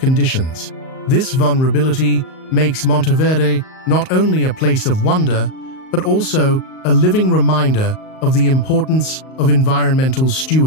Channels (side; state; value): right; late; 38 ms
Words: This vulnerability makes Monteverde not only a place of wonder, but also a living reminder of the importance of environmental